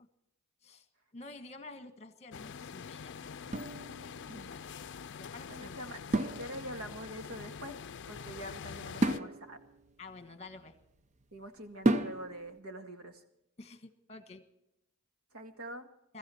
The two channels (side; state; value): both; normal; correlation 0.56